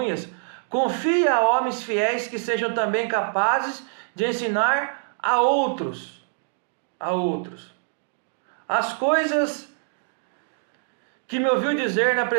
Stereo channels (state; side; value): silent; left; digital silence